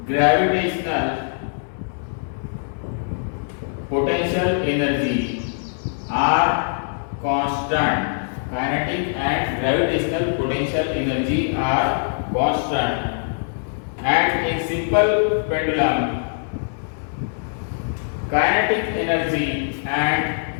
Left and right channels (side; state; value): right; silent; digital silence